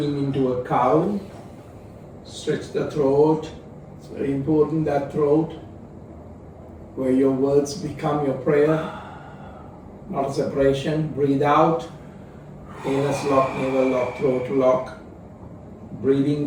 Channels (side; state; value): both; identical; correlation 1.00